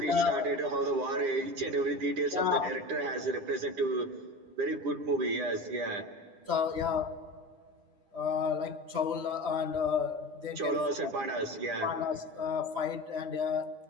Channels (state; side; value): late; left; 9.9 ms